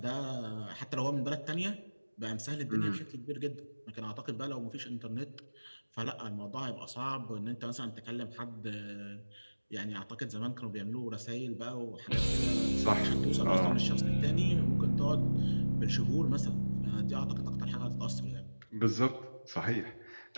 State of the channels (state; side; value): inverted; both; correlation -1.00